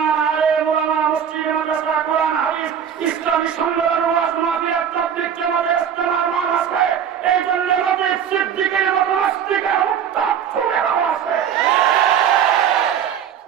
আলেম, উলামা, মসজিদ, মাদ্রাসা, কোরআন, হাদিস, ইসলামী সম্মেলন, ওয়াজ মাহফিল, তাবলীগ, জামাতের ইজতেমার মান আছে। এই জন্য নবী সিদ্দিকের মতো নাস্তিকের উত্তাপ সুরেরাও আছে।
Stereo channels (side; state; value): left; quieter; 8.5 dB